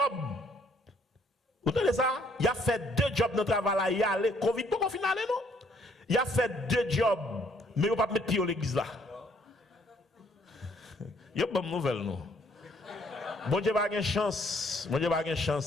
Vous entendez ça? Il a fait 2 jobs dans travail là, il a allé Covid pour qu'on finale non? Il a fait 2 jobs, mais il pas mettre pied à l'église là. Il y a bonne nouvelle non. Bon Dieu pas gain chance, bon Dieu pas gain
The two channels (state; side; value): normal; both; correlation 0.65